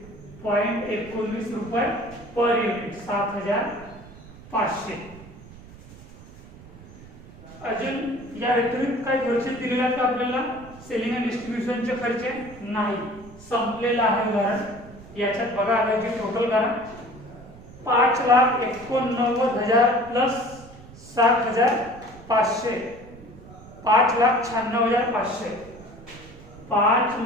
0.19 रुपये पर युनिट 7,500 अजून या व्यतिरिक्त काही खर्च दिलेला आहे का आपल्याला सेलिंग अँड डिस्ट्रीब्युशनचे खर्च नाही संपलेला आहे उदाहरण याच्यात बघा आलाय टोटल करा 5,89,000 प्लस 7,500 5,96,500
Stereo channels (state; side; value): noise; right; rumble, 19 dB below the sound